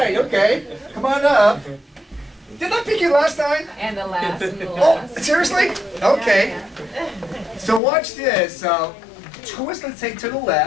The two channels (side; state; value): right; drops out; at 7.8 s